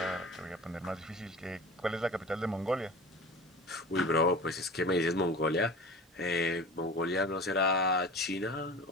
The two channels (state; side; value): normal; both; correlation 0.36